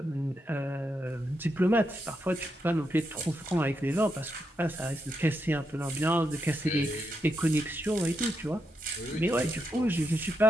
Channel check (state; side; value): normal; both; correlation 0.83